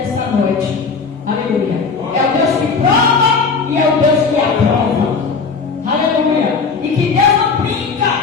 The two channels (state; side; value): quieter; right; 4.9 dB